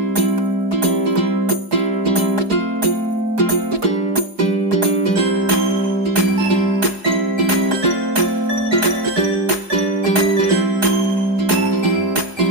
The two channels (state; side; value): late; left; 4.8 ms